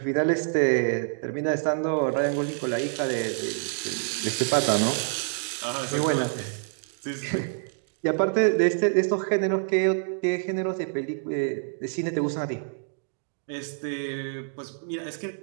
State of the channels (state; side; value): silent; left; digital silence